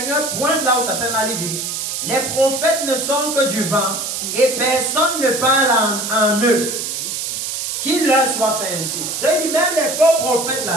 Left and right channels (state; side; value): noise; right; hiss, 4 dB below the sound